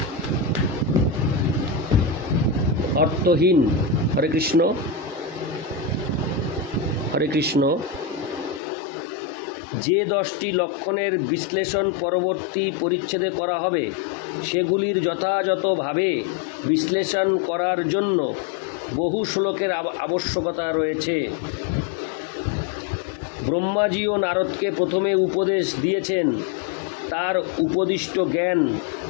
হরে কৃষ্ণ। হরে কৃষ্ণ। যে 10টি লক্ষণের বিশ্লেষণ পরবর্তী পরিচ্ছেদে করা হবে, সেগুলির যথাযথভাবে বিশ্লেষণ করার জন্য বহু শ্লোকের আবশ্যকতা রয়েছে। ব্রহ্মাজি ও নারদকে প্রথমে উপদেশ দিয়েছেন তার উপদিষ্ট জ্ঞান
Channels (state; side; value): drops out; right; at 8.6 s